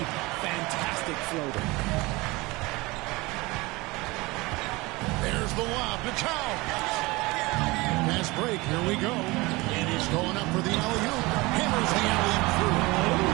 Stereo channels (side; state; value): left; quieter; 22.8 dB